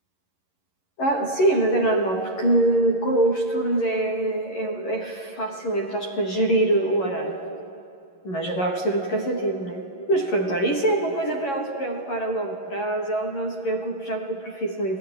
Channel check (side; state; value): right; late; 11 ms